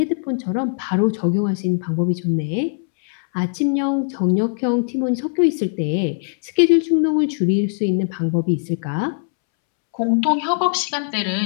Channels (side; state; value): right; silent; 65 dB below the other